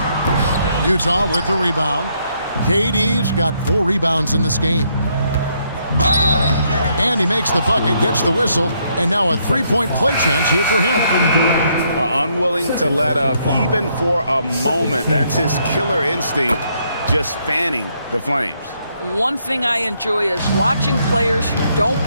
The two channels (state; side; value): inverted; both; correlation -0.73